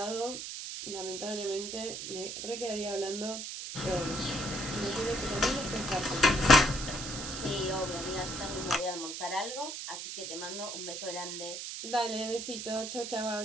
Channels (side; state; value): right; noise; hiss, 6 dB below the sound